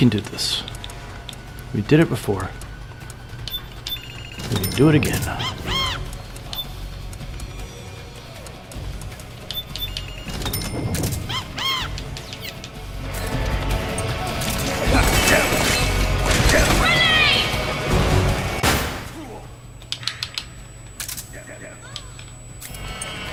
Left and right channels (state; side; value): identical; both; correlation 1.00